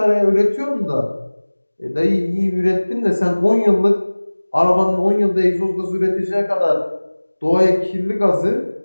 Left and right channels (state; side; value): inverted; both; correlation -1.00